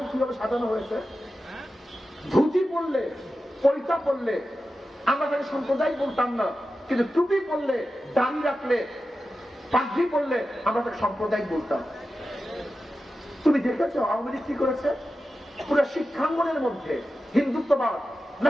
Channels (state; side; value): normal; both; correlation 0.92